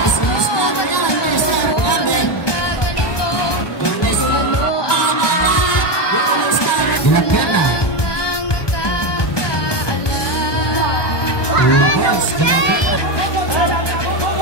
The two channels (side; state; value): right; late; 1.2 ms